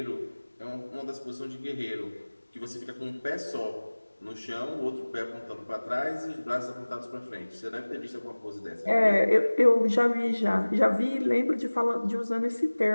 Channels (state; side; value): inverted; both; correlation -1.00